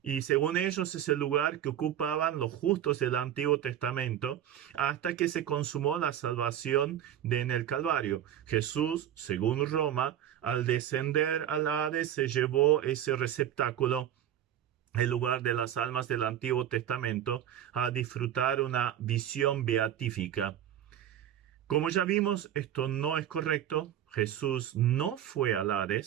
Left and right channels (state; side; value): quieter; left; 11.0 dB